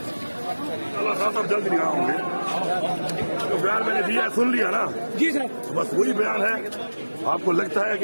अल्लाह साहब जल्द नहीं होंगे। तो बयान मैंने दिया है, सुन लिया ना जी सर। बस वही बयान है। आपको लगता है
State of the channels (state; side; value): inverted; both; correlation -1.00